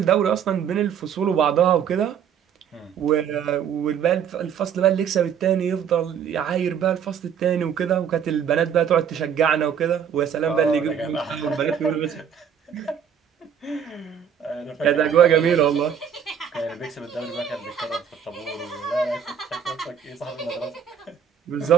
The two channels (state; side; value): quieter; left; 8.1 dB